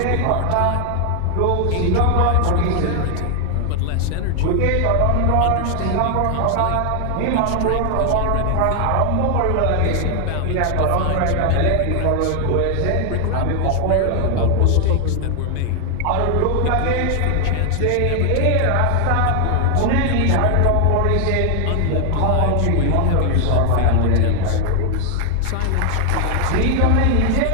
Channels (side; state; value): both; different; correlation 0.00